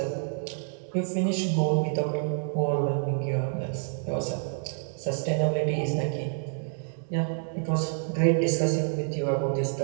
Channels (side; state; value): left; silent; digital silence